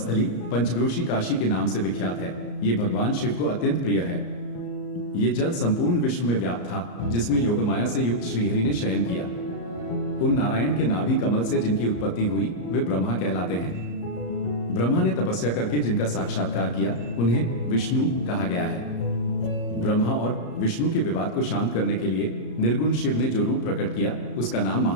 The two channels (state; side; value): late; right; 34 ms